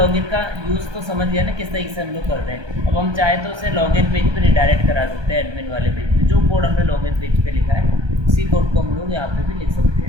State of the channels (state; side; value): late; left; 1.3 ms